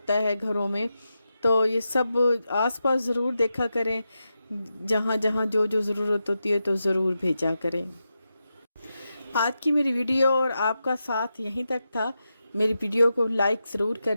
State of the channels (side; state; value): both; inverted; correlation -0.89